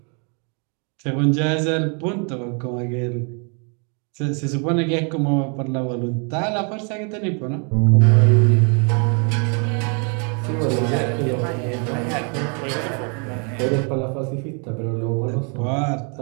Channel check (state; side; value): quieter; left; 37.8 dB